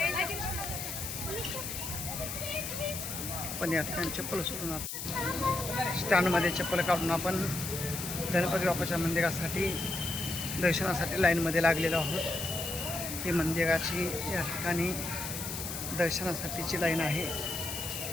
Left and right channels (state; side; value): noise; left; hiss, 6 dB below the sound